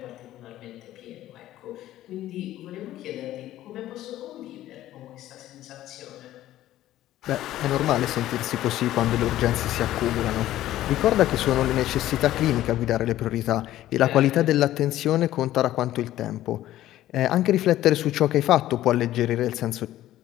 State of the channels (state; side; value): quieter; right; 14.0 dB